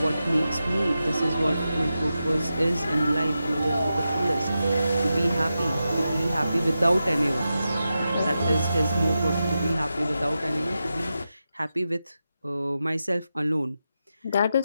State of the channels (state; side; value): inverted; both; correlation -0.90